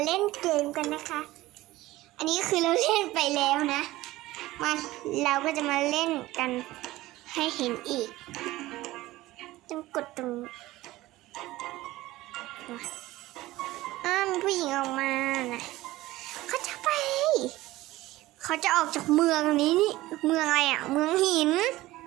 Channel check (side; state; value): left; quieter; 17.5 dB